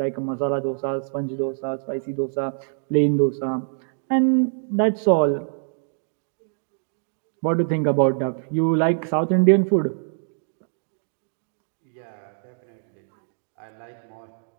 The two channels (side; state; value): left; silent; digital silence